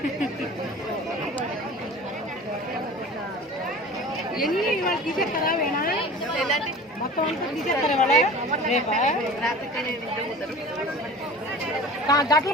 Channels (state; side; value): normal; both; correlation 0.40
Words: ఎన్ని ఇవాళ తీసేస్తారా వేణా మొత్తం అంతా తీసేస్తారా ఇవాళ రేపా గట్లు